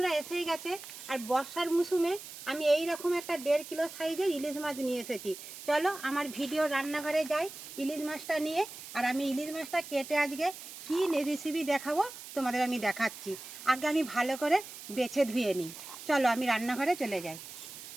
এসেই গেছে, আর বর্ষার মৌসুমে আমি এই রকম একটা 1.5 কিলো সাইজের ইলিশ মাছ নিয়ে এসেছি। চলো আমার ভিডিও রান্নাঘরে যাই ইলিশ মাছটা নিয়ে, আর আমি ইলিশ মাছটা কেটে আজকে কী রেসিপি দেখাবো তোমাদের আমি দেখাচ্ছি। আগে আমি ভালো করে বেছে ধুয়ে নিই। চলো আমি রান্নাঘরে চলে যাই।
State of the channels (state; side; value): noise; right; hiss, 13 dB below the sound